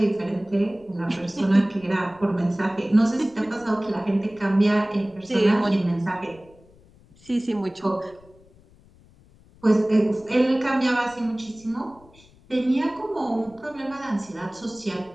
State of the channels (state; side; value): noise; left; rumble, 27 dB below the sound